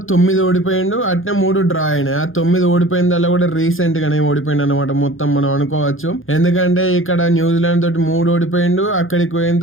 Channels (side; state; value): right; late; 0.59 ms